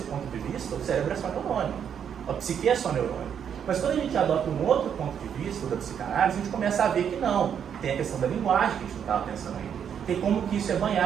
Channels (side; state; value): left; quieter; 8.2 dB